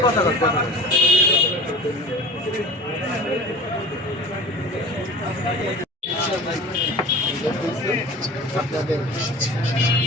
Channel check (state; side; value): normal; both; correlation 0.37